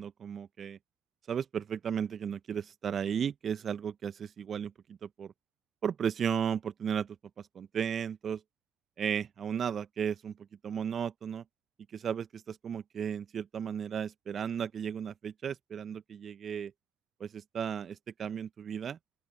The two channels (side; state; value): left; quieter; 7.5 dB